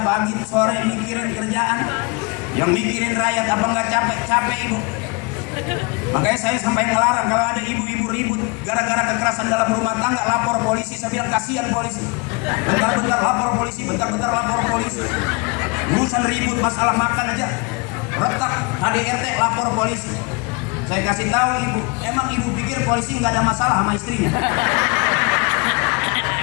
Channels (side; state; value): right; quieter; 29.5 dB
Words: sore mikirin kerjaan, yang mikirin rakyat, apa nggak capek ibu? Makanya saya sampai ngelarang kalau ada ibu-ibu ribut gara-gara kekerasan dalam rumah tangga, lapor polisi. Saya bilang kasihan polisi, bentar-bentar lapor polisi, bentar-bentar lapor polisi. Urusan ribut masalah makan aja retak, KDRT lapor polisi. Saya kasih tahu ibu, emang ibu pikir polisi nggak ada masalah sama istrinya?